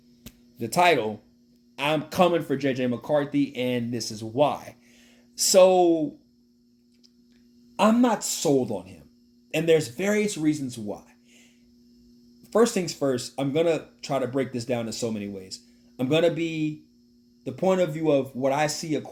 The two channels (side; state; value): both; identical; correlation 1.00